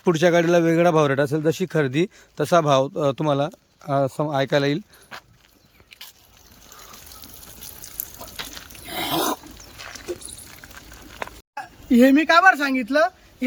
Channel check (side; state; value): both; identical; correlation 1.00